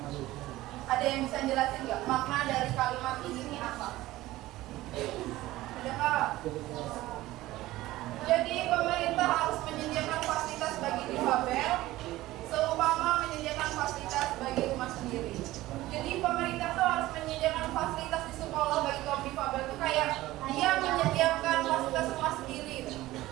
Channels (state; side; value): quieter; left; 16.9 dB